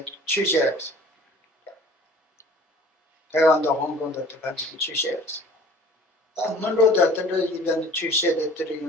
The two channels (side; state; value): both; normal; correlation 0.48